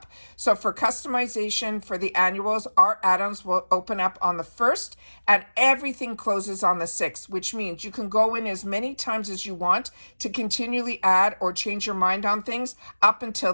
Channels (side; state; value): both; inverted; correlation -1.00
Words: So for customization for the annuals, our add-ons will open up on the 1st, and everything closes on the 6th, which means you can go in as many times as you want to continually add or change your mind on things up until